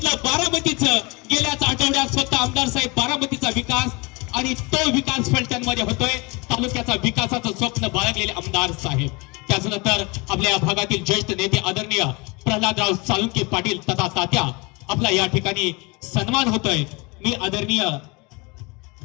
बारामतीचं. गेल्याच आठवड्यात स्वतः आमदार साहेब बारामतीचा विकास आणि तो विकास फलटणमध्ये होतोय. तालुक्याचा विकासाचं स्वप्न बाळगलेले आमदार साहेब. त्याचनंतर आपल्या भागातील ज्येष्ठ नेते आदरणीय प्रल्हादराव साळुंखे पाटील तथा तात्या आपला या ठिकाणी सन्मान होतोय. मी आदरणीय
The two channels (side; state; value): right; quieter; 27.4 dB